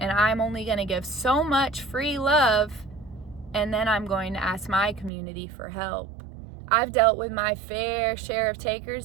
I'm only going to give so much free love, and then I'm going to ask my community for help. I've dealt with my fair share of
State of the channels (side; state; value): left; drops out; at 5.1 s